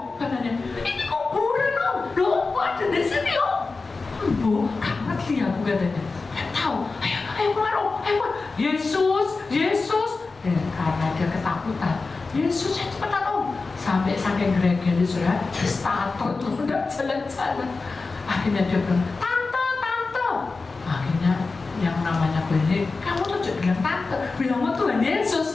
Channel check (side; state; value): right; quieter; 4.0 dB